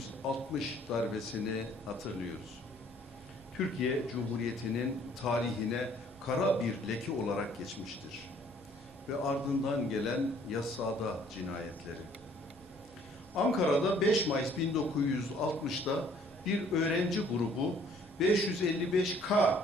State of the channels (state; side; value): normal; both; correlation 0.59